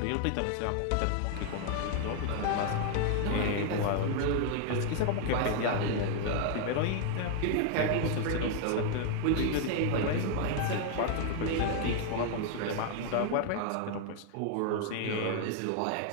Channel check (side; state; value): both; different; correlation 0.00